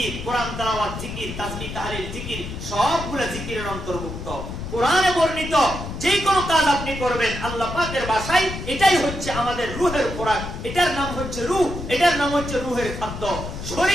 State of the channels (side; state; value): left; noise; rumble, 8 dB below the sound